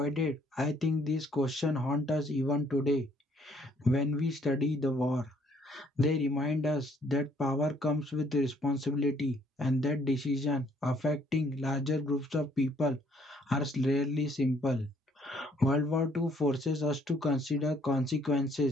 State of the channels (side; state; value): both; normal; correlation 0.64